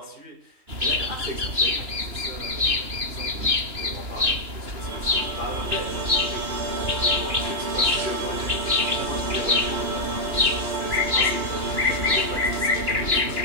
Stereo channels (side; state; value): left; late; 2.9 ms